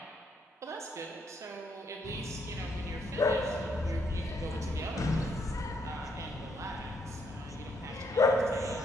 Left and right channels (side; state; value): both; normal; correlation 0.73